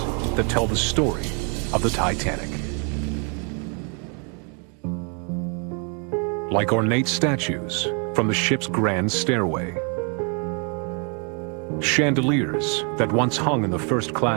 that tell the story of the Titanic. Like ornate statues from the ship's grand stairway. Chandeliers that once hung in the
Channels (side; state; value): left; quieter; 37.8 dB